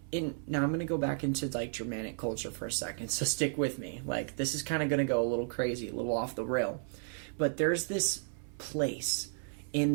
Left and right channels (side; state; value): left; silent; 55 dB below the other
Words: I'm gonna go back into Germanic culture for a second, so stick with me. This is kind of gonna go a little crazy, a little off the rail, but there's this place in